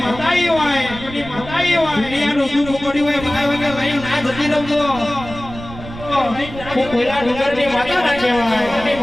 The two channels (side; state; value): right; noise; rumble, 13 dB below the sound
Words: કોઈલા ડુંગરની માતા ના કહેવાય